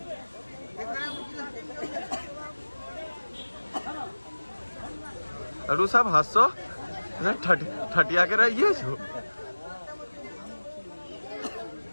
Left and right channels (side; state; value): both; inverted; correlation -1.00